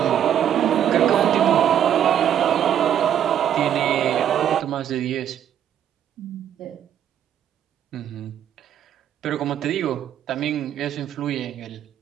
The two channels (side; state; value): left; quieter; 9.9 dB